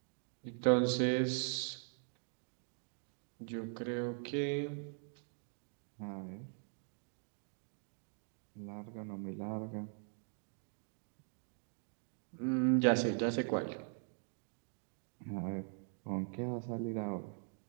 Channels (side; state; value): left; silent; 50 dB below the other